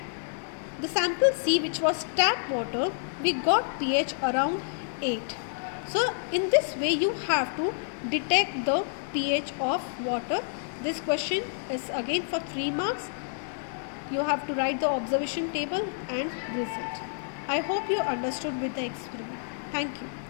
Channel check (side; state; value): right; silent; digital silence